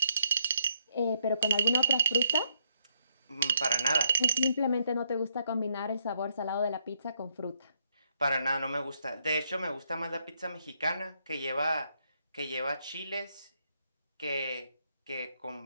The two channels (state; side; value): inverted; both; correlation -0.75